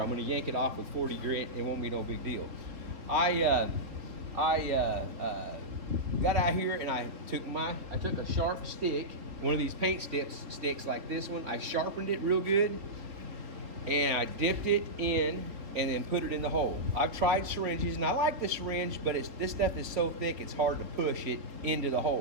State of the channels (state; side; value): late; left; 3.9 ms